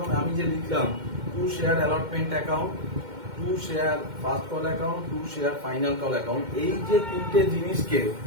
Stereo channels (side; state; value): left; late; 2.1 ms